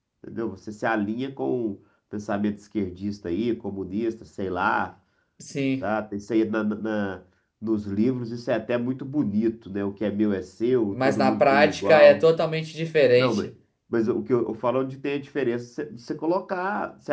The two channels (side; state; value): both; identical; correlation 1.00